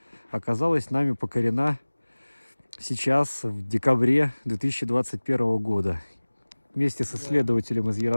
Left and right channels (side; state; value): both; inverted; correlation -1.00